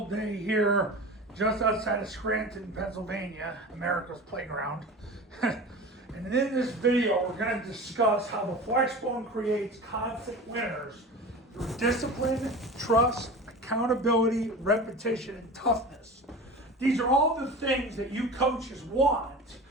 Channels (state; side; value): normal; both; correlation 0.33